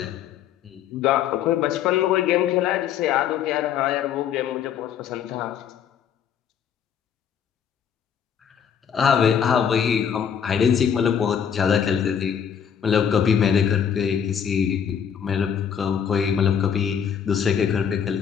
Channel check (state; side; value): quieter; right; 8.2 dB